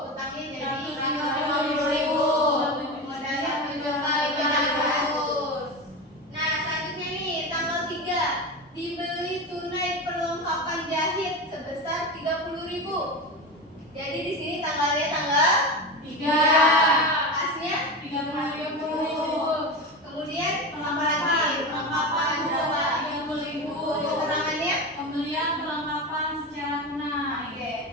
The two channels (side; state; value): both; normal; correlation 0.22